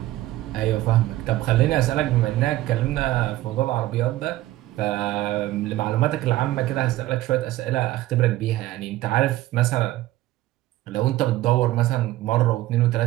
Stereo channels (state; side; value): quieter; left; 15.9 dB